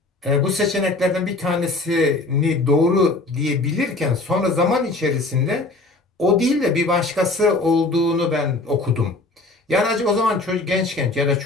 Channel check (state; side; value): quieter; right; 3.1 dB